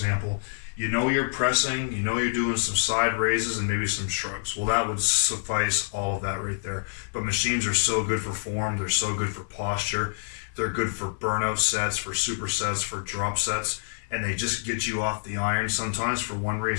You know you're pressing, you know you're doing some side raises and maybe some shrugs. Well, that would suffice all of that right there. But machines are so good for form. They're so good for posture. They're good for burnout sets, for supersets, for drop sets. And they just get you off the iron sometimes for one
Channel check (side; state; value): right; silent; 57 dB below the other